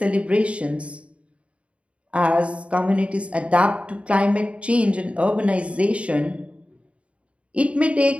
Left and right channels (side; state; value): left; late; 0.062 ms